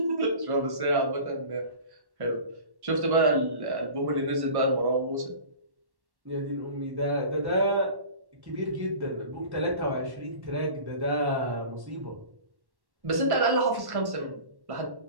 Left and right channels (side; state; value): left; late; 1.1 ms